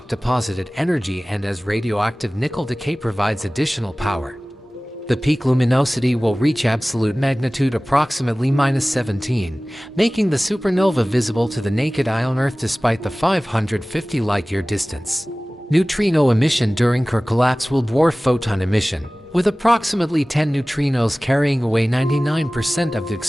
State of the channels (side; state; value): both; normal; correlation 0.98